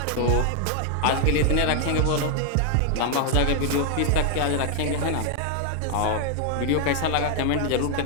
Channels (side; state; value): both; different; correlation 0.00